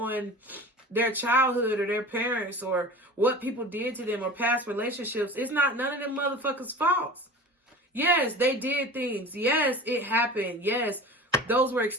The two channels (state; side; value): normal; both; correlation 0.37